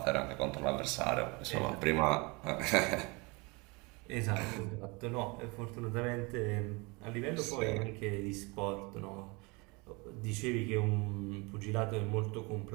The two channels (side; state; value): left; quieter; 27.6 dB